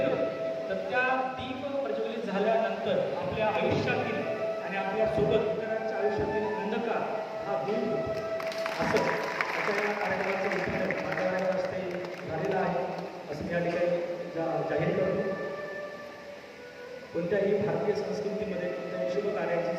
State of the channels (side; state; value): both; identical; correlation 1.00